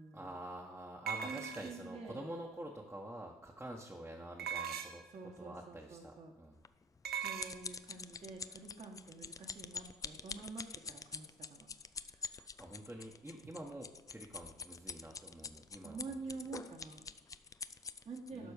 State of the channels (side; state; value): both; normal; correlation 0.42